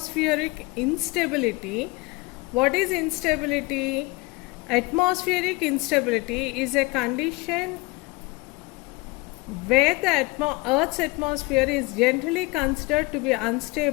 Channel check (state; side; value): quieter; right; 24.2 dB